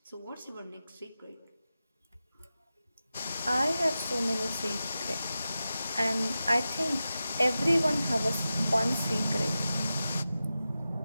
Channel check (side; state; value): both; inverted; correlation -0.93